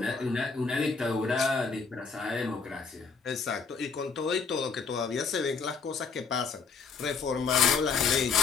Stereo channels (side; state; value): right; quieter; 5.2 dB